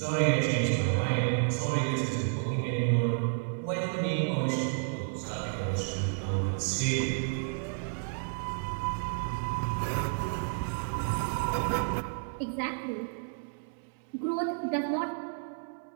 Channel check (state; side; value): silent; left; digital silence